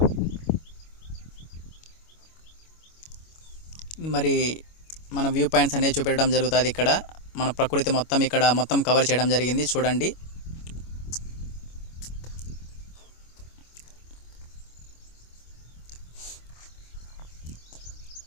మరి మన వ్యూ పాయింట్స్ అనేవి చూపెట్టడం జరుగుతుంది. ఇక్కడ మన ప్రకృతి మొత్తం కవర్ చేయడం జరిగింది చూడండి.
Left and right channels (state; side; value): late; right; 25 ms